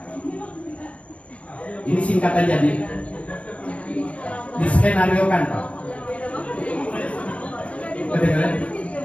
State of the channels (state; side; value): late; right; 0.063 ms